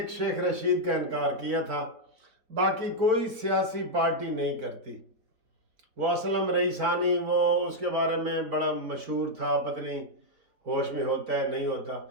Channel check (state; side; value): late; left; 4.5 ms